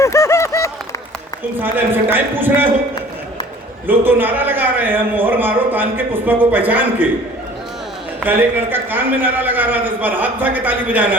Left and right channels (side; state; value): both; normal; correlation 0.49